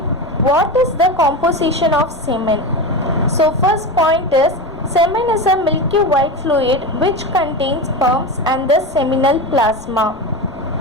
what is the composition of semen? So first point is semen is a milky white fluid which contains sperms and the seminal plasma.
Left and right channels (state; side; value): noise; left; rumble, 19 dB below the sound